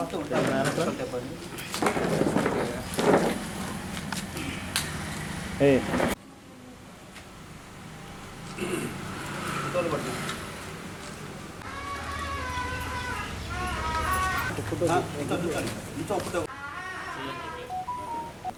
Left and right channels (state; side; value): identical; both; correlation 1.00